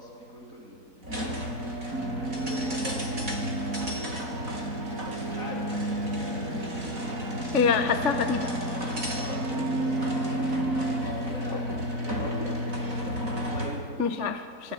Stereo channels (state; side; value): late; left; 4.1 ms